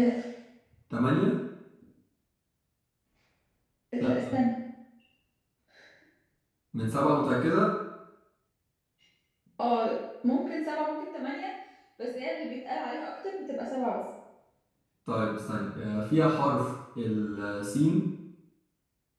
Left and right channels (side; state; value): both; identical; correlation 1.00